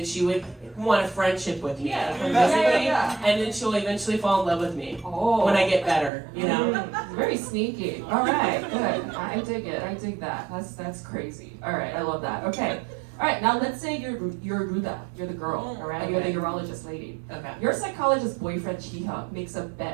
she would want a friendship with me, and then she'll eventually fall in love with me when I get better. You know, very sneaky. All right, good. I dig it. I dig that. That's crazy. All right, I love that. Okay. All right, now let's say you're Ruda, you're the girl, all right? Okay. You're the urologist lady. Okay. Your psychologist boyfriend Chi-hyuk makes a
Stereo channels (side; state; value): left; drops out; at 6.1 s